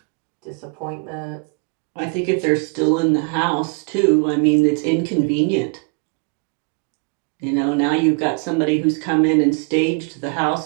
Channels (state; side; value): quieter; left; 37.2 dB